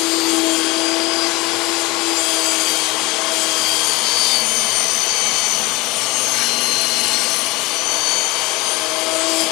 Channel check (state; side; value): quieter; right; 23.0 dB